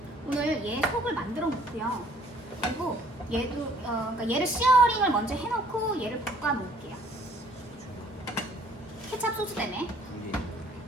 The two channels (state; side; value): normal; both; correlation 0.59